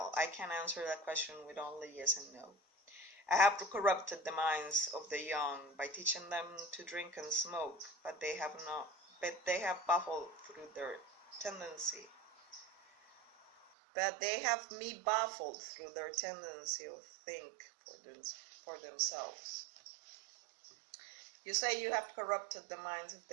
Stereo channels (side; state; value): left; drops out; at 13.7 s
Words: that question with only yes and no. I have corrupted the minds of the young by teaching them to drink and smoke, but they have baffled through their tendency. But they have me baffled through their tendency to think for themselves. You say you have corrupted the minds of